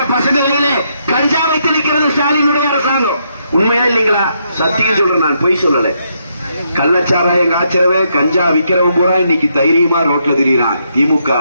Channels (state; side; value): inverted; both; correlation -0.77